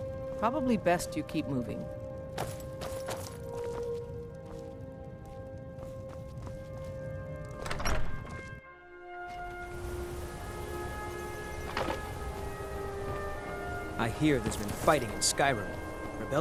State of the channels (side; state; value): both; identical; correlation 1.00